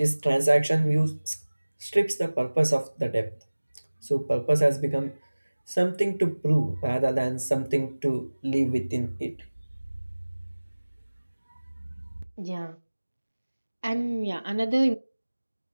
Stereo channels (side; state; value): both; inverted; correlation -1.00